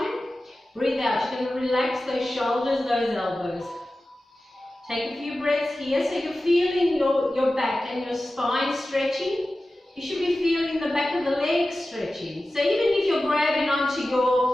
Breathe out. You're going to relax those shoulders, those elbows. Take a few breaths here so you're feeling your back and your spine stretching. You should be feeling the back of the legs stretching. So even if you're grabbing onto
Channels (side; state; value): both; normal; correlation 0.95